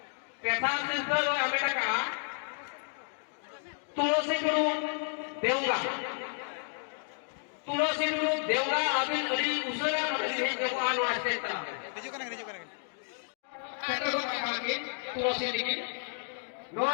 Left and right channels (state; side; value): silent; right; 57 dB below the other